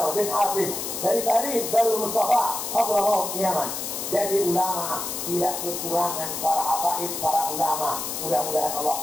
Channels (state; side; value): noise; left; hiss, 5 dB below the sound